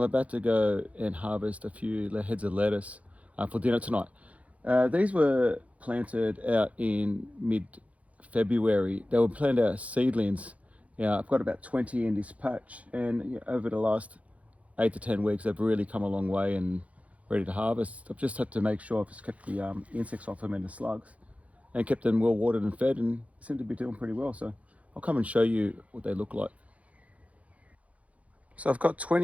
about to go and harvest a few heads of lettuce for dinner tonight. These were planted out in mid-February. They were planted out as seedlings. Yeah, I've got about 20 in this patch, and over the last 8 to 10 weeks, they've really come a long way and ready to harvest. I've just had to make sure I've just kept the insects off them and the slugs, and kept them well watered and fed, and seem to be doing pretty well. So I'll come and show you what they look like. So I've got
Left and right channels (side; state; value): left; late; 0.066 ms